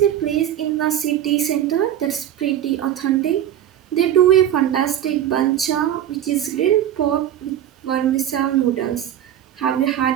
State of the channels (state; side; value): quieter; left; 11.0 dB